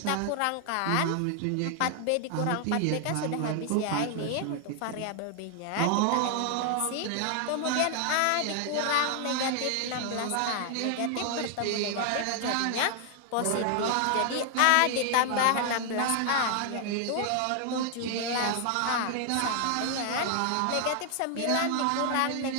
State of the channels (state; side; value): different; both; correlation 0.00